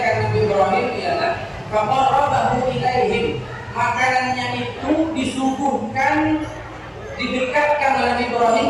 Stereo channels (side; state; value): both; identical; correlation 1.00